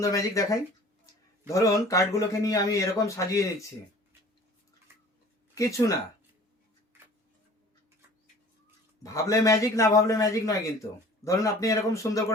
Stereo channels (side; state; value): both; normal; correlation 0.47